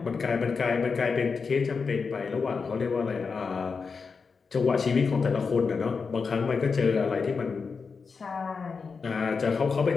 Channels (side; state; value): right; quieter; 5.1 dB